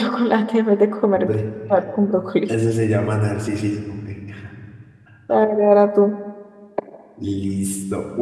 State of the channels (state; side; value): identical; both; correlation 1.00